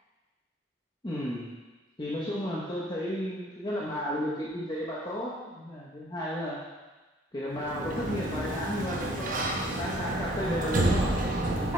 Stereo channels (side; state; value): both; normal; correlation 0.59